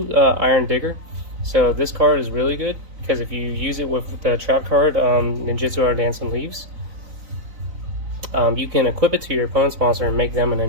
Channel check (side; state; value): left; late; 3.9 ms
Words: Iron Digger. So this card is really good because if you use it with the trap card, Ninjutsu or Dancing Leaves, You can equip it to your opponent's monster and make them a